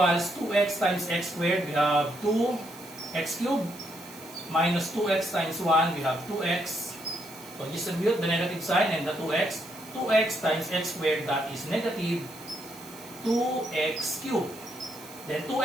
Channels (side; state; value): right; noise; hiss, 18 dB below the sound